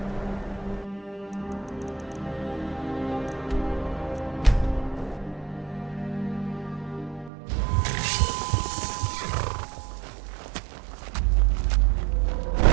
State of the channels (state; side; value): drops out; left; at 7.3 s